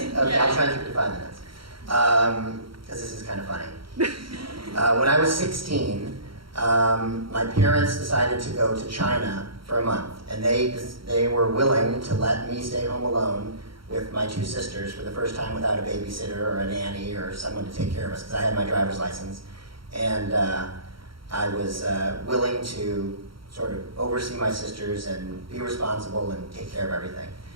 Okay, Yeah. I'll try and keep it to 5 minutes. Because this is kind of funny. When I was 16, my parents decided to go to China for a month, and they were willing to let me stay home alone with my two sisters for the first time without a babysitter or a nanny or someone to take care of us, because I had my driver's license. And I was willing to sort of oversee my sisters and be responsible and take care of everything.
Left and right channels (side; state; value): left; late; 0.74 ms